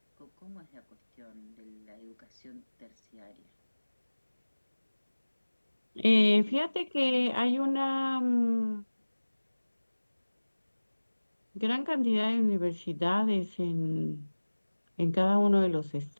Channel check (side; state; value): both; inverted; correlation -1.00